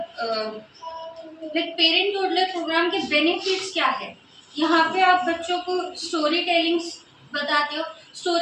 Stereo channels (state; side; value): identical; both; correlation 1.00